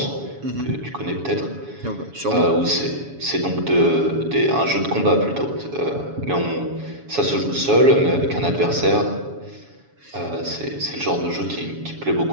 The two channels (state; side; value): late; left; 7.1 ms